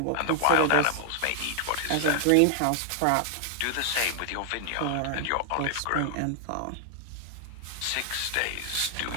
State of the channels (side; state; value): both; different; correlation 0.00